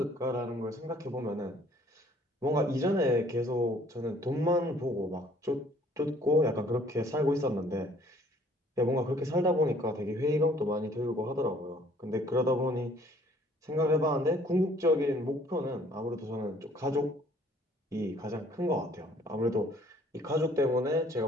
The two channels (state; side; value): normal; both; correlation 0.58